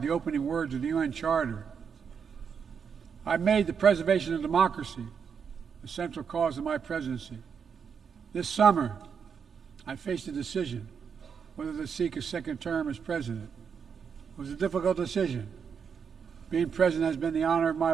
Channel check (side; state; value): left; quieter; 6.7 dB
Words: the opening words of the UN Charter. I made the preservation of democracy the central cause of my presidency. This summer, I faced a decision whether to seek a second term as president. It was a difficult decision. Being president has been the honor of my